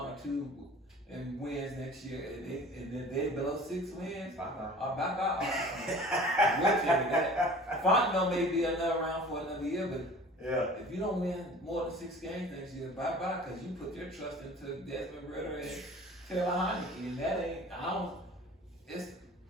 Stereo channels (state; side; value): normal; both; correlation 0.44